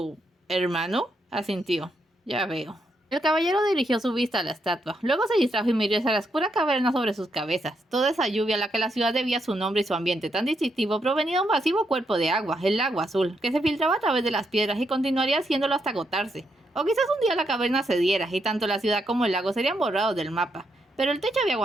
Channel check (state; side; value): normal; both; correlation 0.79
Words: hermano? Asintió. Ya veo. El caballero dirigió su vista a la estatua. Luego se distrajo y miró hacia la oscura caverna sobre sus cabezas. Toda esa lluvia a la que la ciudad debía su nombre y su ambiente tan distintivo provenía de un masivo cuerpo de agua, el lago azul, que se filtraba a través de las piedras y continuaría haciéndolo hasta agotarse. O quizás un día la caverna cediera y tanto la ciudad como el lago serían borrados del mapa. Pero el techo había